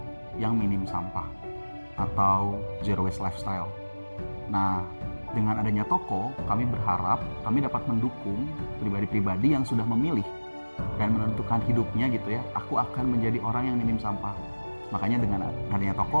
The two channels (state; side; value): inverted; both; correlation -1.00